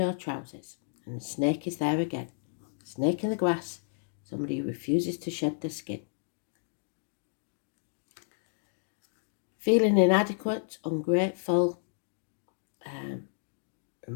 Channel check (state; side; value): silent; right; digital silence